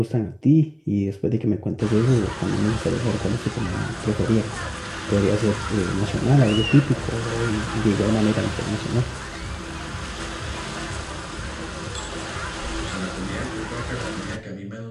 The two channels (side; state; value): both; identical; correlation 1.00